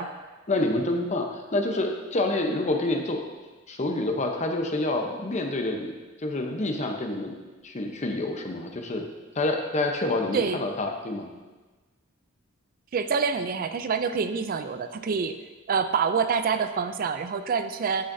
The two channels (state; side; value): normal; both; correlation 0.14